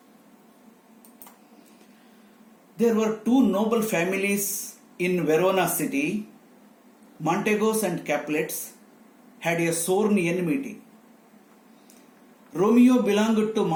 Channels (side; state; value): both; identical; correlation 1.00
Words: There were two noble families in Verona city. Montegos and Capulets had a sworn enmity. Romeo belonged to